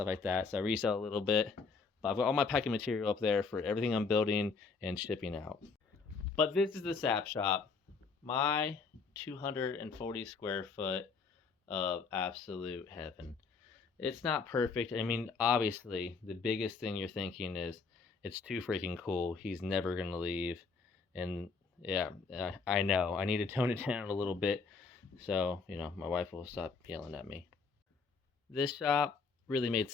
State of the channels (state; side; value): quieter; right; 4.8 dB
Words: like that, so I resell a little bit, but I've got all my packing material up there for everything I'm building and shipping out. But this is the Sap Shop, my 240 square foot of absolute heaven. It's not perfect. I mean, obviously, the biggest thing you're thinking is it's too freaking cool. He's never going to leave. And yeah, I know. I need to tone it down a little bit so, you know, my wife will stop yelling at me. This shop really made